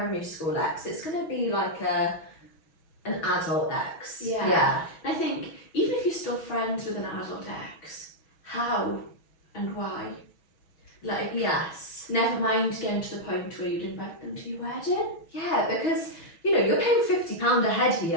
school ex. It's going to be like an adult ex. Yeah. I think even if you're still friends with an adult ex, how and why? Like, Yes. never mind getting to the point where you'd invite them to your wedding. Yeah, because you know you're paying £50 a head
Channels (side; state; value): right; late; 6.2 ms